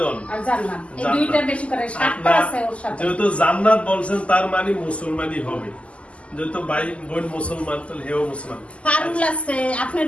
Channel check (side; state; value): right; late; 0.060 ms